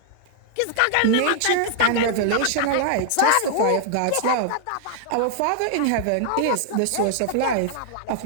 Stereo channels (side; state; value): both; different; correlation -0.01